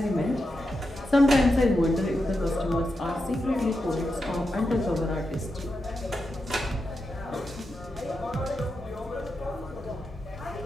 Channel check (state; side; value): normal; both; correlation 0.88